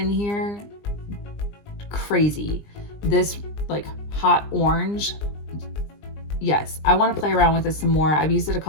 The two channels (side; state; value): right; late; 20 ms